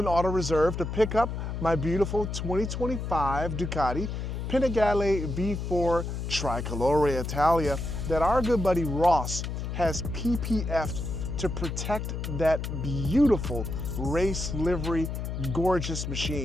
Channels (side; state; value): left; noise; hum, 4 dB below the sound